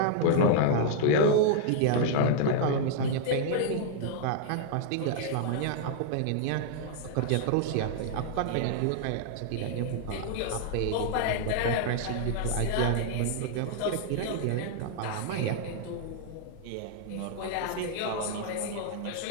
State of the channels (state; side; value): different; both; correlation -0.01